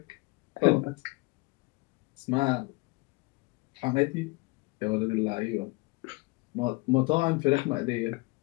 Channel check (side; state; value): right; quieter; 25.6 dB